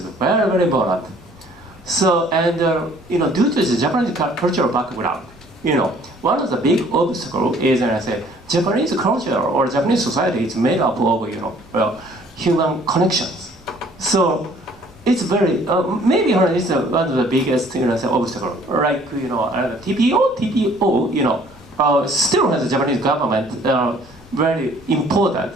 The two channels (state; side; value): normal; both; correlation 0.57